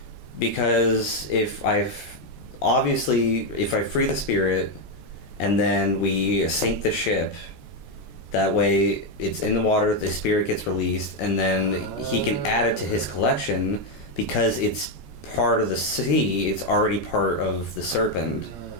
Because if I free the spirit and then we sink the ship, that way it's in the water, the spirit gets released, and then he can add it to his collection because it's part of the sea, it's already part of the serpent.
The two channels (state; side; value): late; right; 14 ms